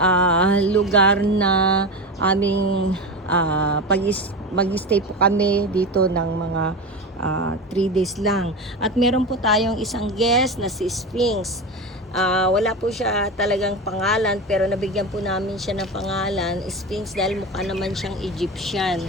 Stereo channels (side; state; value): both; normal; correlation 0.23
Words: lugar na aming mag-stay po kami dito ng mga 3 days lang. At meron po tayong isang guest na si Sphinx. Wala po siya talagang pangalan, pero nabigyan po namin siya ng pangalan Sphinx dahil mukha naman siyang Egyptian.